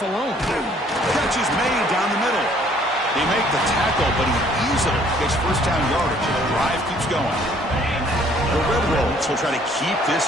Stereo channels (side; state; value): both; normal; correlation 0.60